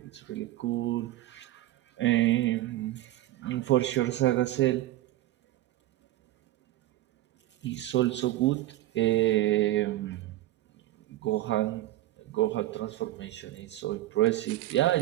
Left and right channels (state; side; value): quieter; left; 15.4 dB